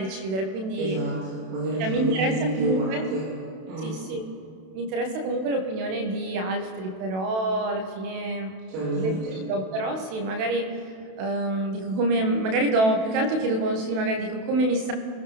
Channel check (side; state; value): left; late; 32 ms